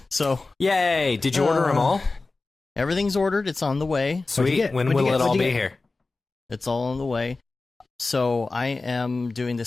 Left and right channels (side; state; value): right; quieter; 3.6 dB